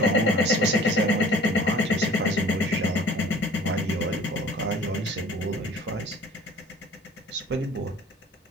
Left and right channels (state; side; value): normal; both; correlation 0.48